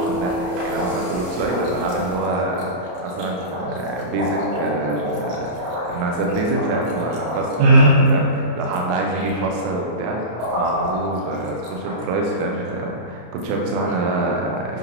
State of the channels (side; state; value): left; late; 33 ms